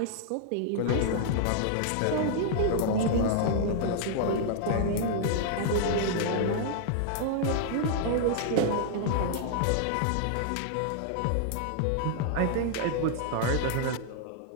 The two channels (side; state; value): both; different; correlation -0.01